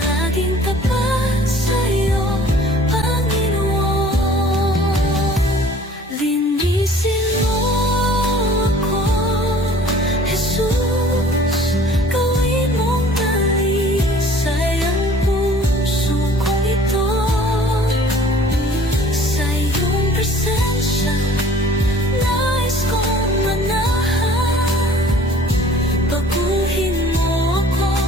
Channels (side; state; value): both; normal; correlation 0.51